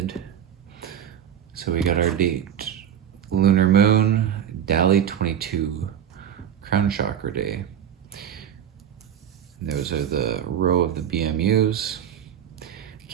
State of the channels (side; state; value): left; quieter; 9.4 dB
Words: So we got our date, Lunar Moon, Dali 22, Crown Chakra Day. Those are the row of the BMUs.